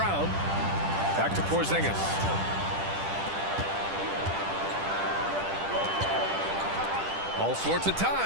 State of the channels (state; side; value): late; left; 10 ms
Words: Back to Porzingis. All sorts of